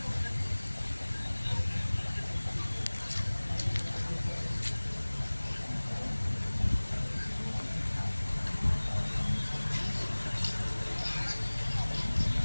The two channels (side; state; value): both; inverted; correlation -1.00